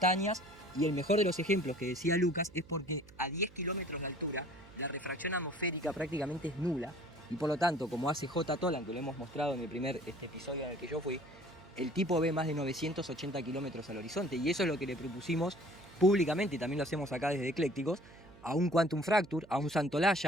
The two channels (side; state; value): right; noise; hum, 23 dB below the sound